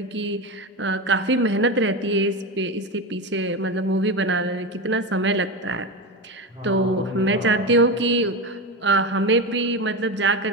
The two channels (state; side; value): normal; both; correlation 0.19